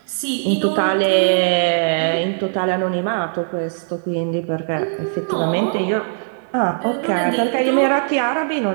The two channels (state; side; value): silent; left; 66 dB below the other